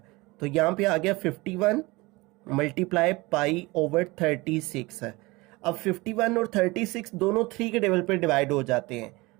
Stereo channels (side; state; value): left; quieter; 22.9 dB